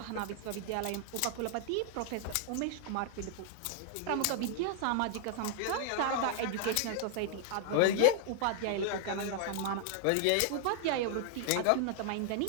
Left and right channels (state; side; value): different; both; correlation 0.00